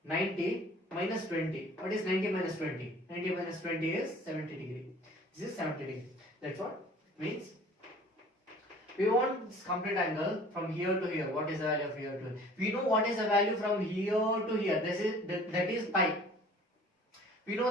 minus 20. What is 90 minus 20? 90 minus 20 is 70 degree. This is 70 degree. That's what it means. We want this complete angle from here to here. What is the value of here to here? We know what is the value from here to here. That is pi. We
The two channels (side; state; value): both; normal; correlation 0.49